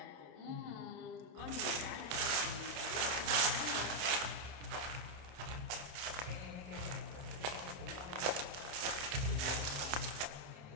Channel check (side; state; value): left; late; 28 ms